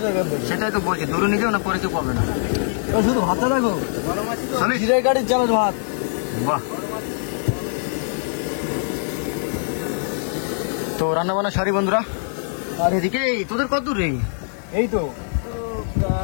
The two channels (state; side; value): silent; right; 63 dB below the other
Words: এখান থেকে। সেটাই তো বলছি, দূরে নিয়ে যাও, না পরে কেউ পাবে না। শুধু ভাতটা রাখো, জিরে গাড়ির চালের ভাত। বাহ, তো রান্না বান্না সারি বন্ধুরা। আর এদিকে তোদের কত দূর রে? এই তো